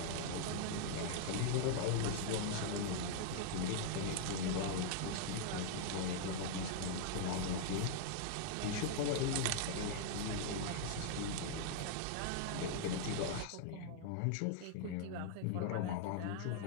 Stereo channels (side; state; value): both; different; correlation -0.01